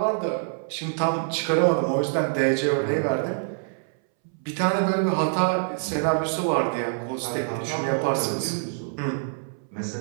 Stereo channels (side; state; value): left; silent; 61 dB below the other